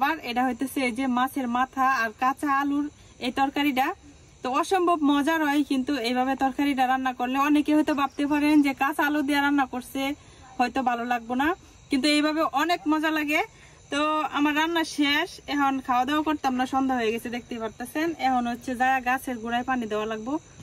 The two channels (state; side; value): identical; both; correlation 1.00